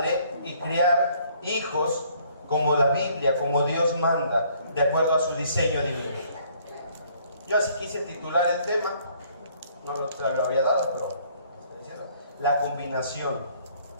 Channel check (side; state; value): both; inverted; correlation -0.62